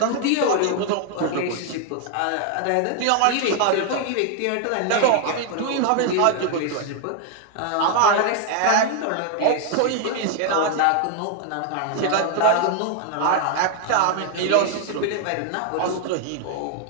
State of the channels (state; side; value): different; both; correlation 0.00